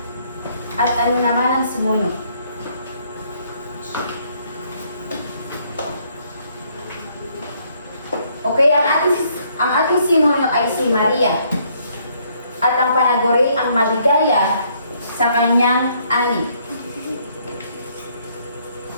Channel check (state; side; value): inverted; both; correlation -0.68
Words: At ano naman ang simono? Okay, ang ating simono ay si Maria. At ang panaguri ang maligaya sa kanyang ani.